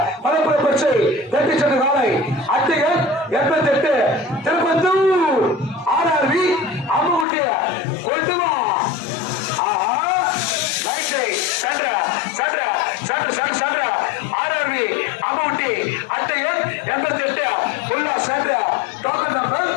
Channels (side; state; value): right; drops out; at 7.2 s